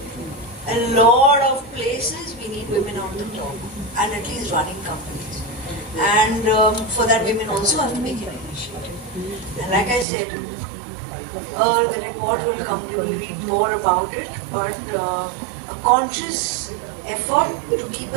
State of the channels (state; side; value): drops out; left; at 10.1 s